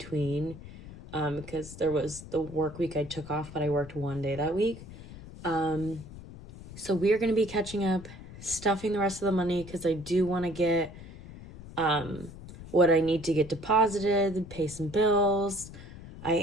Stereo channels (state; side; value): noise; left; rumble, 15 dB below the sound